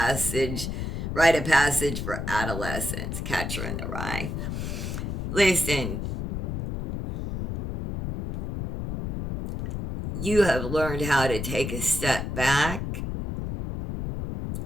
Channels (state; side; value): noise; left; rumble, 4 dB below the sound